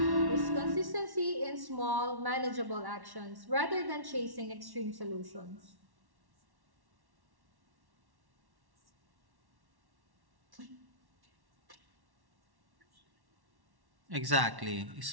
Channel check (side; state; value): left; late; 1.1 ms